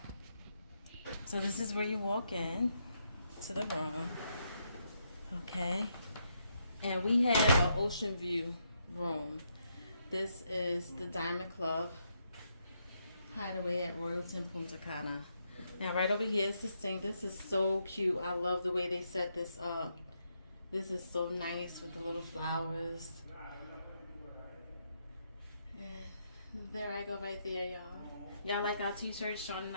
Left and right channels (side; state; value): both; inverted; correlation -0.79